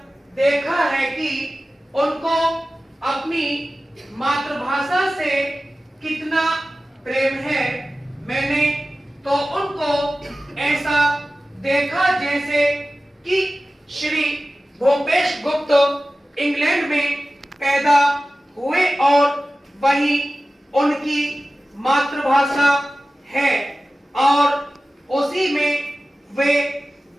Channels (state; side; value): normal; both; correlation 0.96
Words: देखा है कि उनको अपनी मातृभाषा से कितना प्रेम है। मैंने तो उनको ऐसा देखा जैसे कि श्री भूपेश गुप्त इंग्लैंड में पैदा हुए और वही उनकी मातृभाषा है और उसी में वे